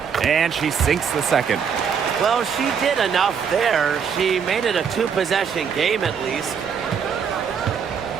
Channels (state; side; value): quieter; left; 6.9 dB